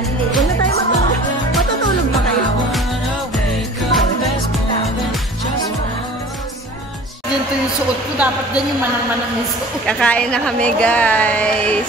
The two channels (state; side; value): normal; both; correlation 0.44